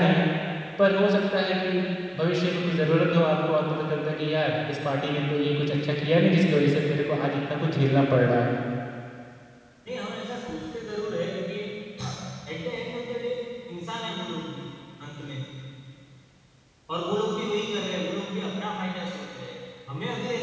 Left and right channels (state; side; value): identical; both; correlation 1.00